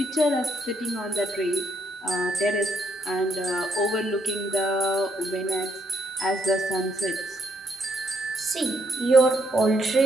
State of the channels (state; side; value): normal; both; correlation 0.74